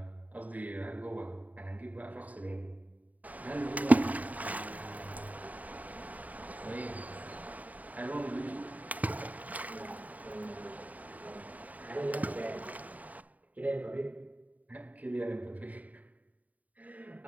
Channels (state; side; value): late; left; 0.073 ms